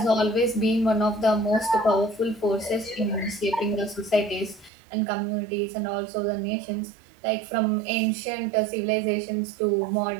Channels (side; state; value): left; drops out; at 4.7 s